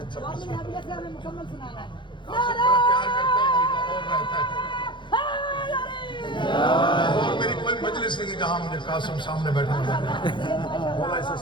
والی حبیبہ سے ہمیں مکمل سنانا ہے پیار کرتا ہے اور رہتا ہے اور میری کوئی مجلس نہیں ہے جہاں مجھے قاسم سامنے بیٹھا مولا اسے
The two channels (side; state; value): right; late; 0.23 ms